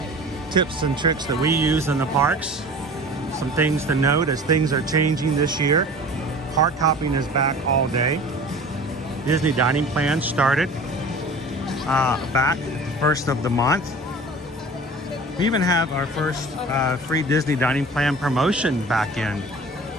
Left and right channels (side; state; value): both; normal; correlation 0.41